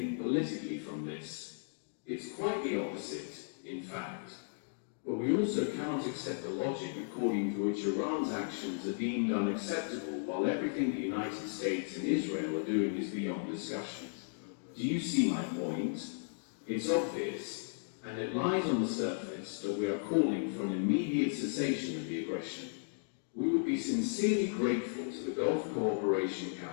politically from this. It's quite the opposite, in fact. But we also cannot accept the logic according to which Iran's actions are deemed unacceptable while everything the United States and Israel are doing is beyond discussion. Do you see my point? It's obvious, and it lies on the surface that we are calling for an immediate cessation of the aggression. We would be sincerely grateful to the Gulf Cooperation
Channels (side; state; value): right; silent; digital silence